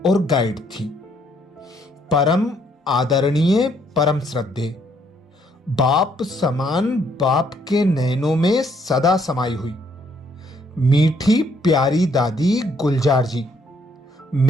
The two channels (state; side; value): normal; both; correlation 0.68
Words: गाइड थी, परम आदरणीय, परम श्रद्धेय, बाप समान, बाप के नैनों में सदा समाई हुई मीठी प्यारी दादी गुलजार जी